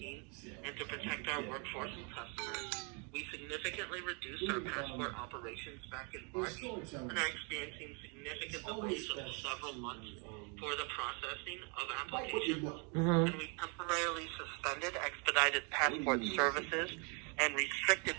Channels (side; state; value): left; quieter; 35.0 dB